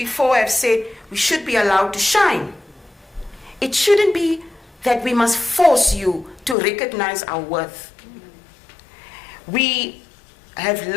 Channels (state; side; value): drops out; right; at 6.6 s